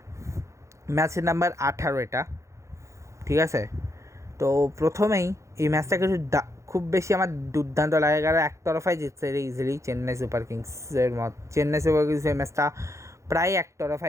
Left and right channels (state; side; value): late; left; 0.14 ms